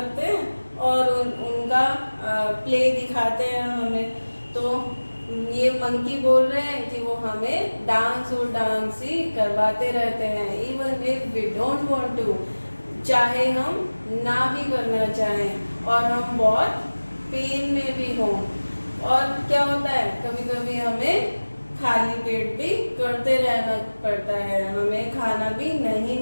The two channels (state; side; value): inverted; both; correlation -1.00